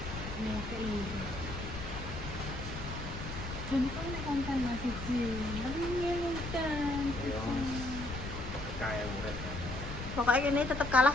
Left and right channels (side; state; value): left; noise; rumble, 8 dB below the sound